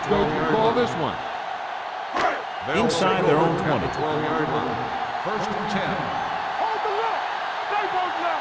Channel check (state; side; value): identical; both; correlation 1.00